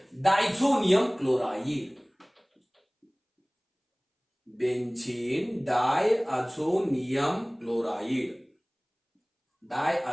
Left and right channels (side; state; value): both; identical; correlation 1.00